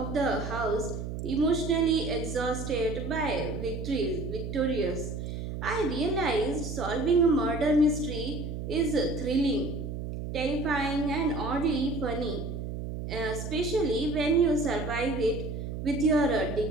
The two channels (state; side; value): noise; right; hum, 6 dB below the sound